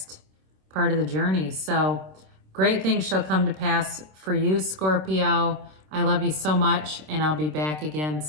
part of the journey. So great things shall come to pass for you, Scorpio. I love you so much, and I'll be back again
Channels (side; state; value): left; late; 26 ms